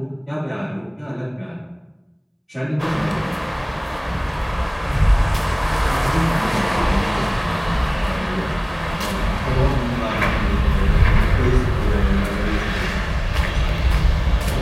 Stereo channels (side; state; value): both; identical; correlation 1.00